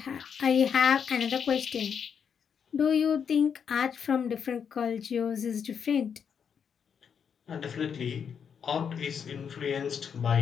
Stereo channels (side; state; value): right; quieter; 7.2 dB